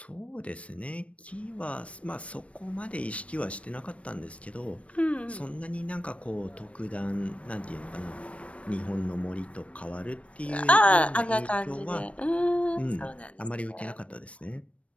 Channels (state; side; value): late; right; 0.063 ms